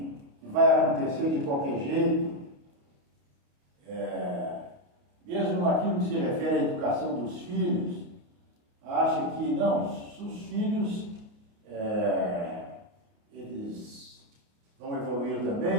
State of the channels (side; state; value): left; late; 29 ms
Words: vai acontecer de qualquer jeito. Mesmo naquilo que se refere à educação dos filhos, acha que não, os filhos, eles vão evoluir